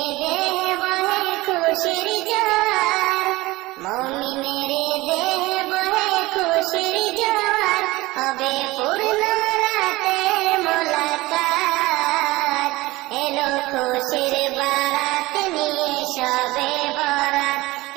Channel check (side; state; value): left; quieter; 20.1 dB